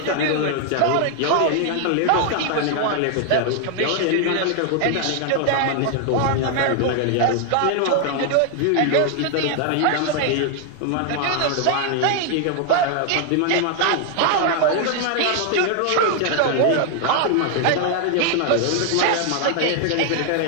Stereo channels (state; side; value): different; both; correlation 0.00